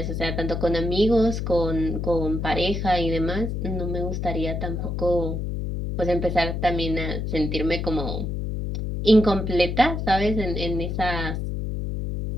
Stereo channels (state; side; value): noise; left; hum, 3 dB below the sound